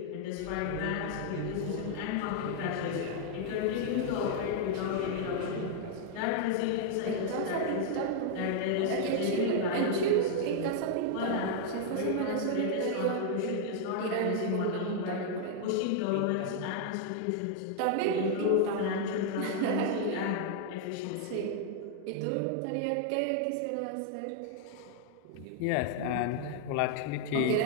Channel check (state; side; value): different; both; correlation 0.00